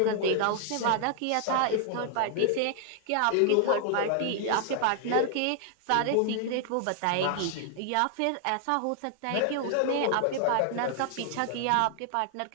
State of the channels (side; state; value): both; different; correlation 0.00